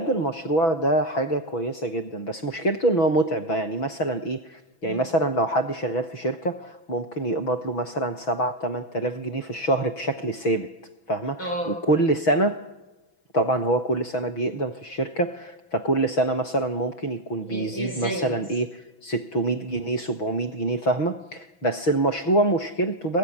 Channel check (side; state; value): right; late; 6.1 ms